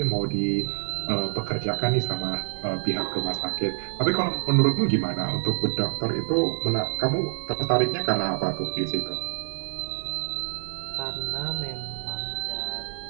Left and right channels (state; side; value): silent; left; digital silence